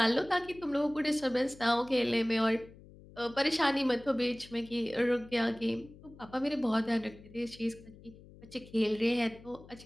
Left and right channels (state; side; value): noise; left; hum, 21 dB below the sound